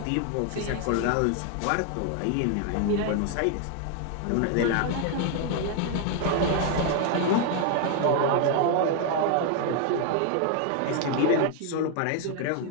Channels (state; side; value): different; both; correlation 0.00